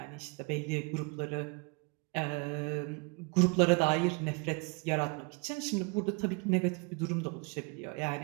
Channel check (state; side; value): quieter; left; 31.7 dB